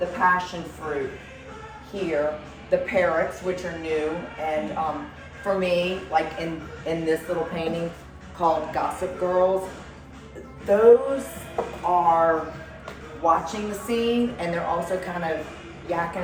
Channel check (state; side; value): identical; both; correlation 1.00